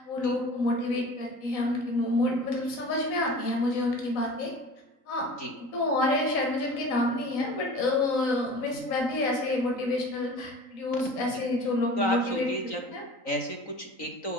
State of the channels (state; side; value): late; right; 3.9 ms